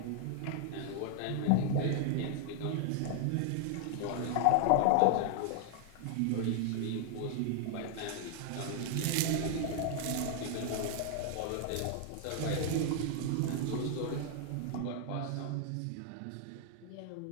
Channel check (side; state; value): both; different; correlation 0.00